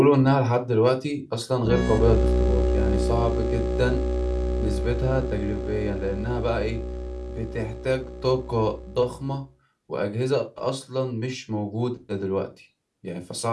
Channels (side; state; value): both; identical; correlation 1.00